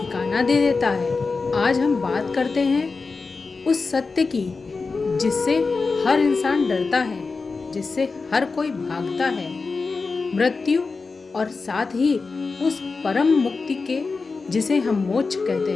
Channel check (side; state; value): right; quieter; 4.3 dB